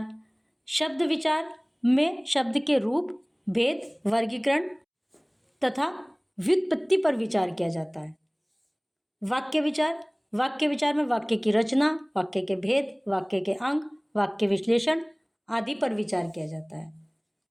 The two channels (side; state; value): both; identical; correlation 1.00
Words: शब्द विचार में शब्द के रूप, भेद, वर्गीकरण तथा व्युत्पत्ति पर विचार किया जाता है। वाक्य विचार, वाक्य विचार में वाक्य की रचना, वाक्य के भेद, वाक्य के अंग, वाक्य विश्लेषण आदि पर विचार किया जाता है।